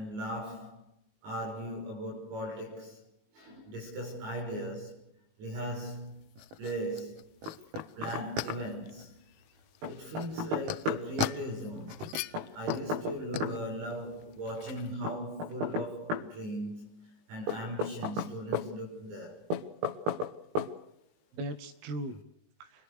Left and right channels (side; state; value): left; late; 19 ms